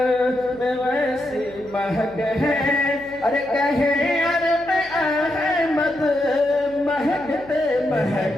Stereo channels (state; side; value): noise; left; hum, 23 dB below the sound